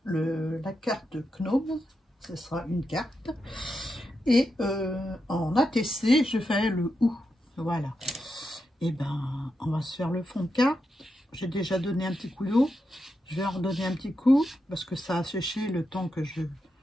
la carte Gnome, ce sera une carte. Et en ATC, je fais le OU. Voilà. Et ben, on va se faire le fond de carte. J'ai déjà donné un petit coup d'eau. Je vais en redonner un petit coup parce que ça a séché le temps que je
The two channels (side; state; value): both; normal; correlation 0.86